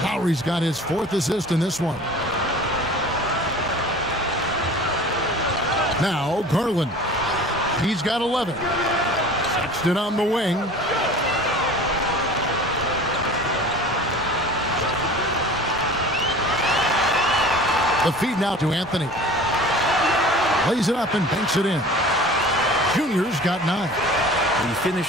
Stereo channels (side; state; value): both; normal; correlation 0.42